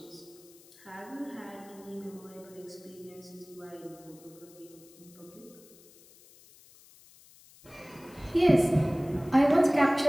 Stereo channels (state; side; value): noise; left; hiss, 24 dB below the sound